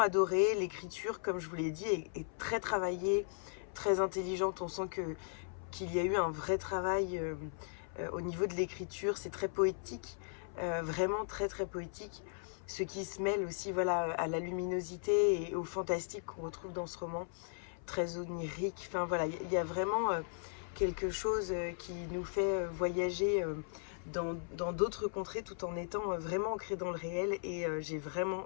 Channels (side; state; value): right; silent; 53 dB below the other